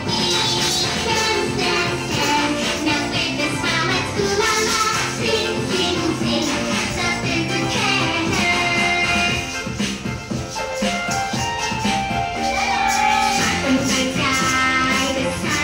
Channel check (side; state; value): both; identical; correlation 1.00